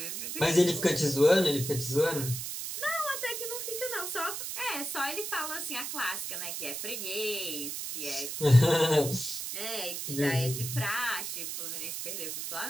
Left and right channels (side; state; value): right; noise; hiss, 5 dB below the sound